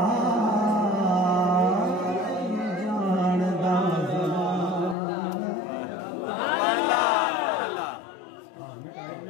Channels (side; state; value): right; drops out; at 5.0 s